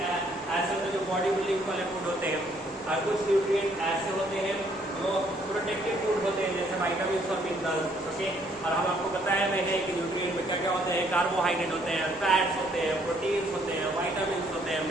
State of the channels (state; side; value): normal; both; correlation 0.66